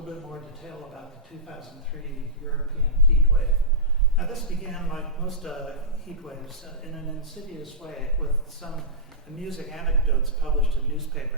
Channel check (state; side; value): normal; both; correlation -0.15